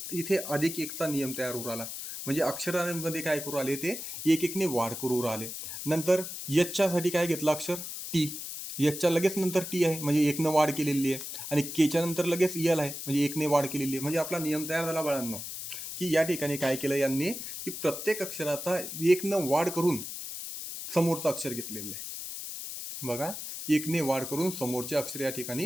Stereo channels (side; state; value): left; noise; hiss, 7 dB below the sound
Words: इथे अधिक एकचा नियम तयार होऊ आला. म्हणजे अक्षरांमध्ये काय करू आले ते एक एकने वाढ करू राहिले. नंतर यच्च्यासाठी काय घेतलं अक्षर टी, यच्च्या लगेच नंतर टी आहे म्हणजे एकनं वाढ केलेली आहे, आणि केच्या नंतर लगेच यल आहे म्हणजे एकने वाढ केलेली आहे. म्हणजे आपला नियम तयार झाला बाळांनो की या ठिकाणी काय केलं यांनी की प्रत्येक अक्षराचा एकनं वाढ करून समोरचं अक्षर घेतलेलं आहे. बघा एकने वाढ करून समोरचे अक्षर या